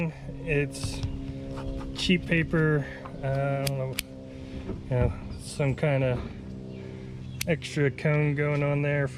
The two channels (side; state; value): both; identical; correlation 1.00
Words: it's cheap paper, I don't know, you know, some kind of extra cone going on there